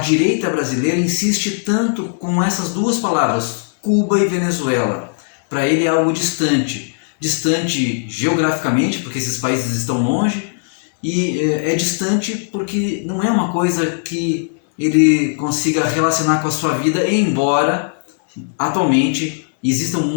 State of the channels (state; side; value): silent; right; 67 dB below the other